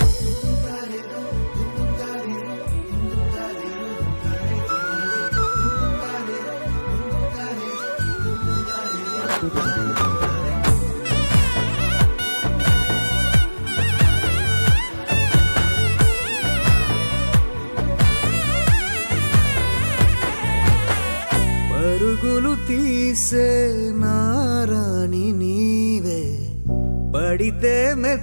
పరుగులు తీసే నారాణి నీవే పడితే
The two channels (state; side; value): inverted; both; correlation -1.00